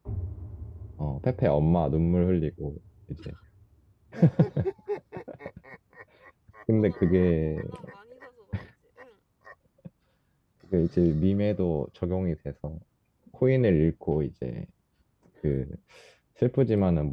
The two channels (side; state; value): both; identical; correlation 1.00